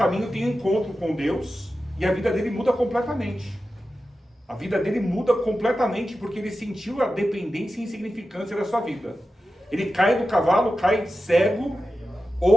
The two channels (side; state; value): both; normal; correlation 0.92